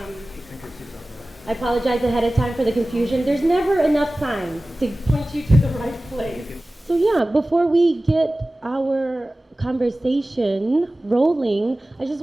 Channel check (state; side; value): normal; both; correlation 0.97